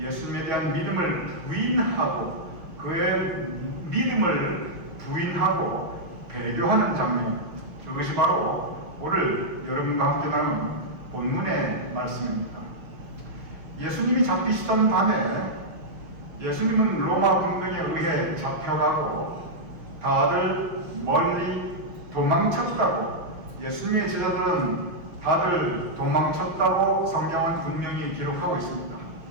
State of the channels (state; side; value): late; left; 5.8 ms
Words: 대한 믿음을 부인하고 그의 믿음을 부인하고 배교하는 장면, 그것이 바로 오늘 여러분과 함께 나눈 본문의 말씀입니다. 예수님이 잡히시던 밤에 예수님은 로마 군병에 의해 잡혀가고 다들 멀리 도망쳤다고, 예수님의 제자들은 다들 도망쳤다고 성경은 분명히 기록하고 있습니다.